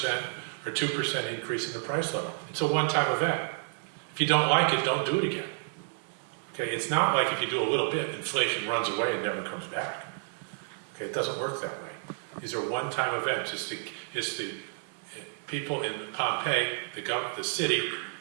or 2% increase in the price level. It's a one-time event. If you don't like it, don't do it again. Okay, it's not like if you do a little bit, inflation runs away and never comes back. Okay, it doesn't work that way. These are one-time events. It's the people in Pompeii, the city,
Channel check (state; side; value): silent; left; digital silence